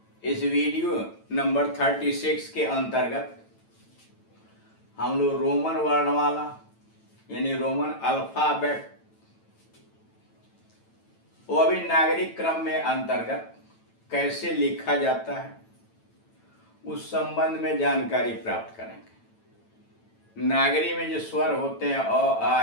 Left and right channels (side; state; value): right; late; 9.0 ms